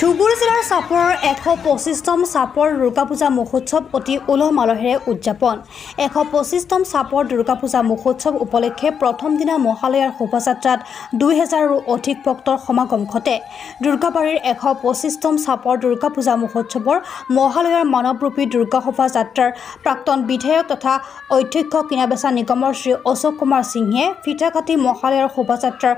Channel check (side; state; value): right; quieter; 7.2 dB